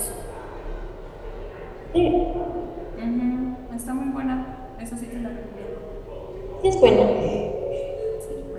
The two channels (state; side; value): identical; both; correlation 1.00